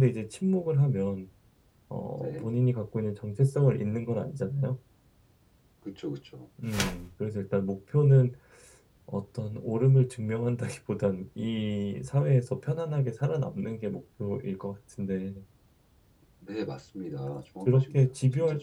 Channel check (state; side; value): identical; both; correlation 1.00